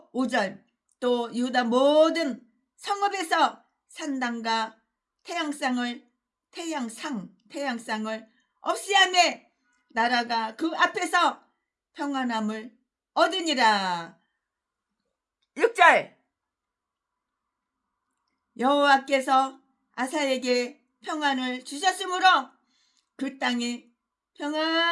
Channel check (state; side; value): identical; both; correlation 1.00